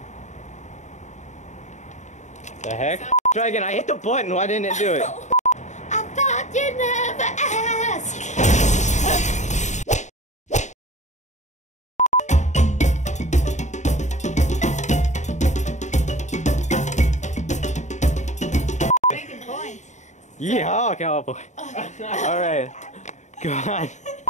The heck? Try again. I hit the button. Why didn't it do it? I thought you'd never ask. Making points. Yeehaw, cowboy. Alright. Go on.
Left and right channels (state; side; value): late; right; 0.34 ms